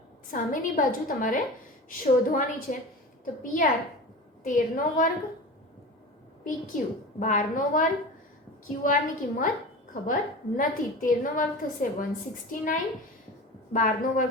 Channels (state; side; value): normal; both; correlation 0.32